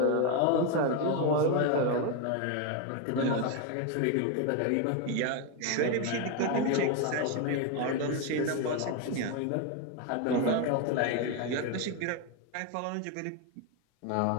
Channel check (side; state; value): both; different; correlation 0.02